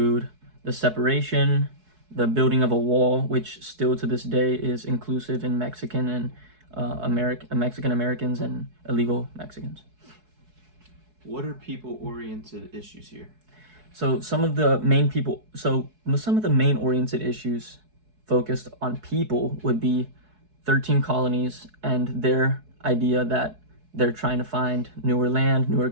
the separation, the building of a wall, which still to this day is inclusive in Mexican and Mexican Americans and illegal Mexicans. What are people-oriented issues here? So some of the main oriented issues focused on people would be 13 colonies and their idea that they're trying to find newer land, newer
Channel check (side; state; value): left; late; 4.7 ms